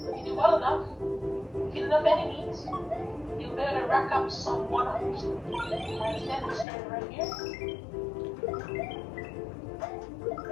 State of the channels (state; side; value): drops out; right; at 6.7 s